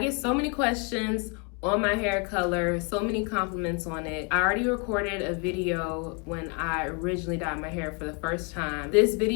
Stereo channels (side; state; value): right; quieter; 34.9 dB